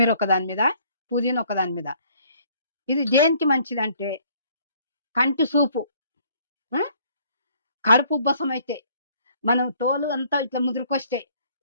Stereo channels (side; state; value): both; inverted; correlation -0.61